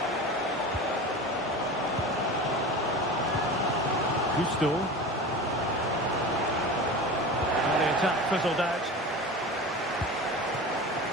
Gusto. And the attack fizzled out.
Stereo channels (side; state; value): both; normal; correlation 0.32